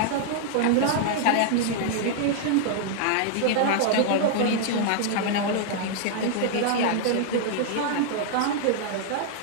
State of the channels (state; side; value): different; both; correlation -0.01